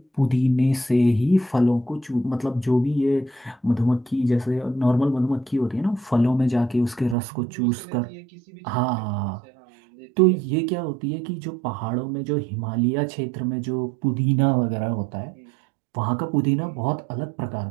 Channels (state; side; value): drops out; left; at 7.2 s